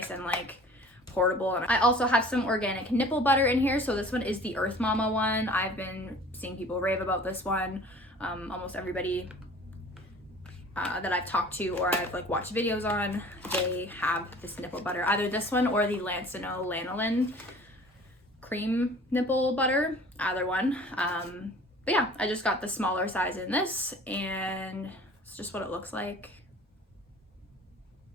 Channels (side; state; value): both; normal; correlation 0.46